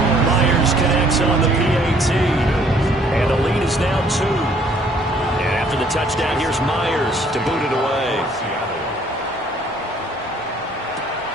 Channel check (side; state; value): both; normal; correlation 0.61